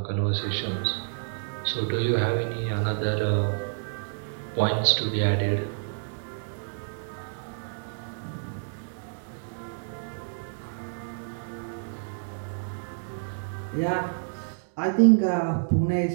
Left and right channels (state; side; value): silent; left; digital silence